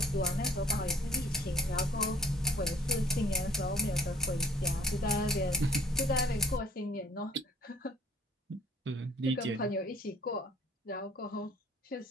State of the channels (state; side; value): normal; both; correlation 0.55